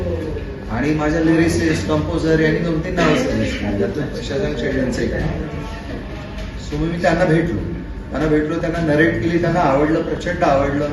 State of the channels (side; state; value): both; identical; correlation 1.00